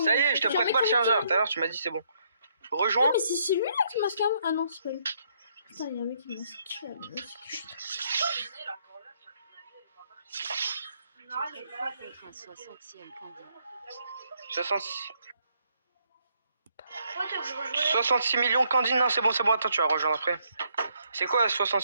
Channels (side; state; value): both; inverted; correlation -0.71